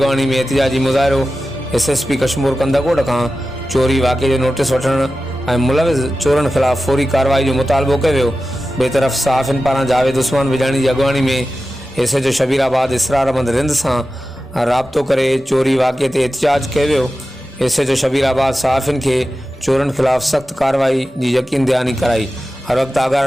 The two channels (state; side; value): normal; both; correlation 0.93